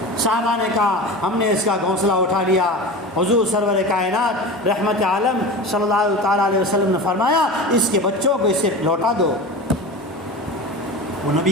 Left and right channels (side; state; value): both; normal; correlation 0.30